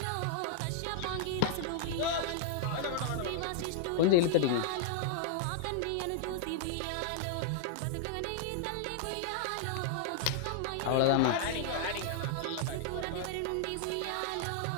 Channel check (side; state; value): both; different; correlation -0.01